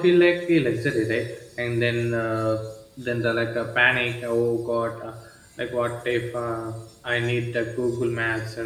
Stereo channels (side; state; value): both; identical; correlation 1.00